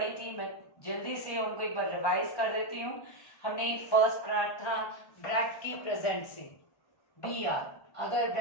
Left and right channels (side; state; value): right; late; 1.1 ms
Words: थी, मैं जल्दी से उनको एक बार रिवाइज कर देती हूँ। हमने फर्स्ट पढ़ा था ब्रैकेट की प्रेजेंट से, बी आर। अगर